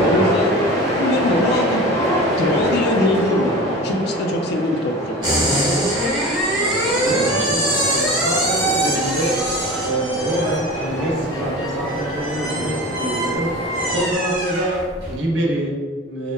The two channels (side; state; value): both; normal; correlation 0.34